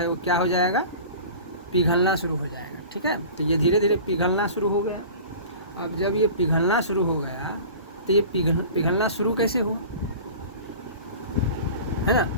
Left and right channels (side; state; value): both; inverted; correlation -0.39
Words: वो क्या हो जाएगा, पिघलना शुरू हो जाएगा। ठीक है, तो ये धीरे धीरे पिघलना शुरू हो गया। अब जब ये पिघलना शुरू हो गया तो ये पिघलना शुरू कैसे हुआ, है ना?